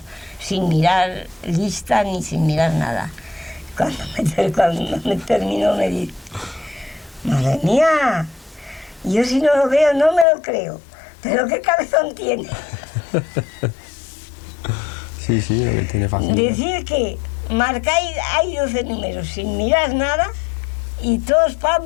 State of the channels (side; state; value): right; drops out; at 10.2 s